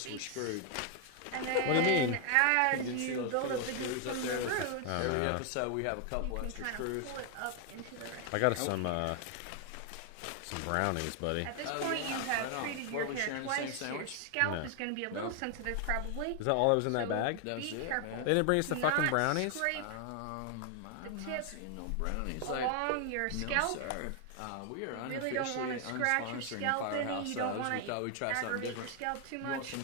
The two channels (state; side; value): different; both; correlation 0.00